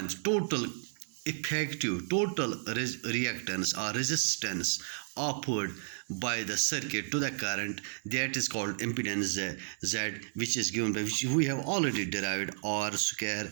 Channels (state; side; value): silent; left; 56 dB below the other